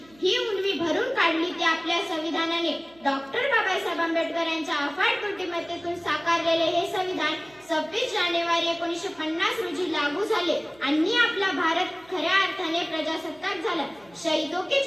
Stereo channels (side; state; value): right; noise; hum, 27 dB below the sound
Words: ही उणीव भरून काढली ती आपल्या संविधानाने। डॉक्टर बाबासाहेब आंबेडकर यांच्या अफाट बुद्धिमत्तेतून साकारलेले हे संविधान 26 जानेवारी 1950 रोजी लागू झाले आणि आपला भारत खऱ्या अर्थाने प्रजासत्ताक झाला। शहीदों की